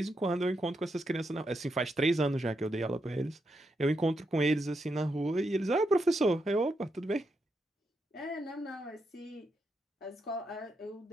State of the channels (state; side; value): normal; both; correlation 0.83